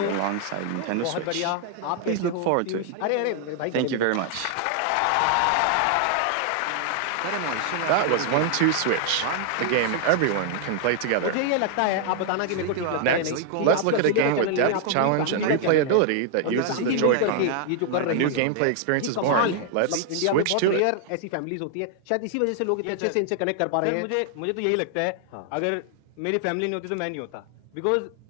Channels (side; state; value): both; different; correlation 0.00